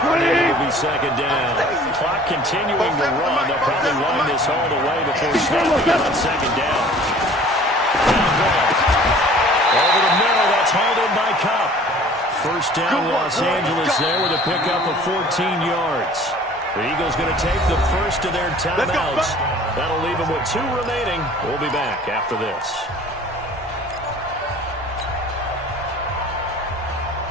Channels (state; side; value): normal; both; correlation 0.49